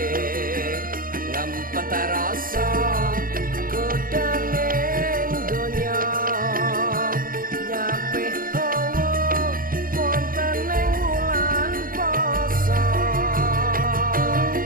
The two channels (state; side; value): late; left; 0.41 ms